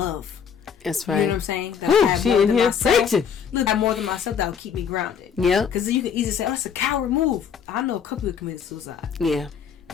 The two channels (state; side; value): quieter; right; 7.3 dB